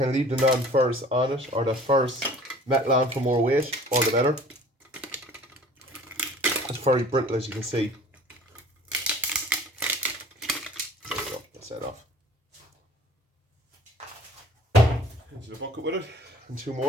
leave the non-ferrous on it, or the ferrous metal on for more weight, all the better. It's very brittle, as you can see. There we go, that's that off. Into the bucket with it, and 2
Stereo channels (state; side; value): normal; both; correlation 0.49